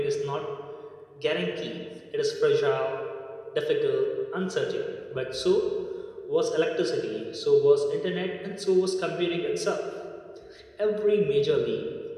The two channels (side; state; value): both; identical; correlation 1.00